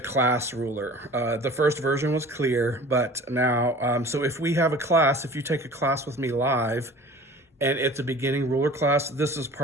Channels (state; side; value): normal; both; correlation 0.44